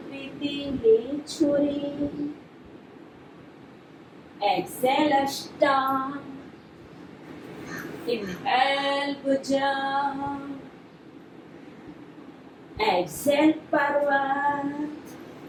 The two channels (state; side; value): identical; both; correlation 1.00